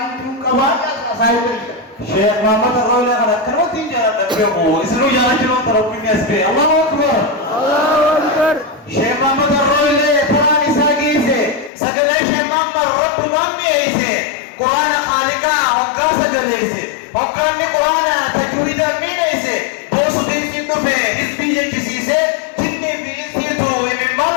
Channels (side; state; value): right; drops out; at 11.7 s